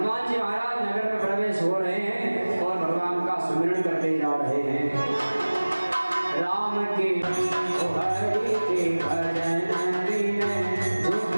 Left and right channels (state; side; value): inverted; both; correlation -1.00